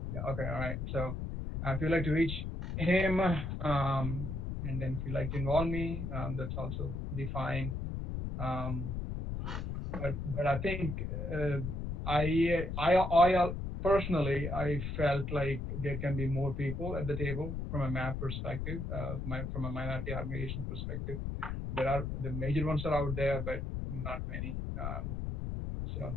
Yeah. Okay. All right. So if you'd like to reach him, and then if you'd like to involve me, that's also be fine. Um, but I think I personally I felt like there can be more people at the table from a map perspective, from a minority organization perspective. There are the major ones are out there, but not many. So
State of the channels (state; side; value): noise; left; rumble, 4 dB below the sound